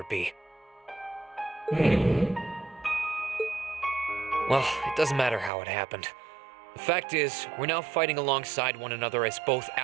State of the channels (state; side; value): drops out; left; at 5.5 s